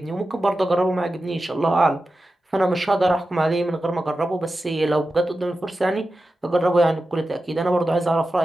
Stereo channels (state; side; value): normal; both; correlation 0.92